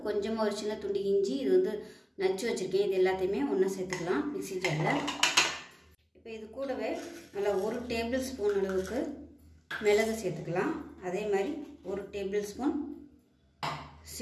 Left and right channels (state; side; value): identical; both; correlation 1.00